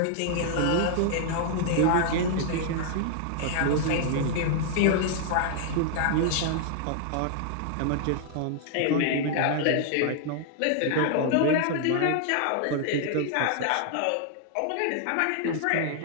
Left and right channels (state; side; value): different; both; correlation -0.01